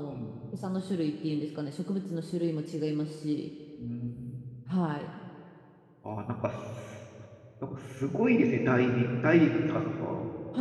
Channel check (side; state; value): both; identical; correlation 1.00